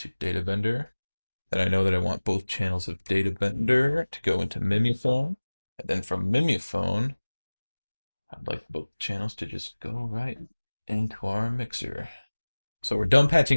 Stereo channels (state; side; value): inverted; both; correlation -1.00